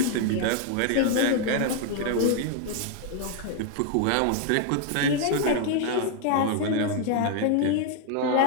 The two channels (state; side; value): different; both; correlation 0.01